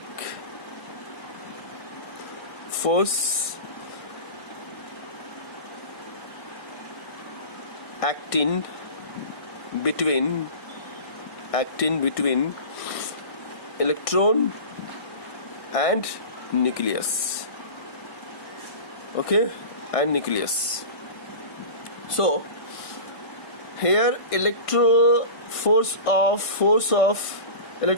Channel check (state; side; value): late; right; 1.6 ms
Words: force acting between electron and nucleus. Okay, and nucleus. So here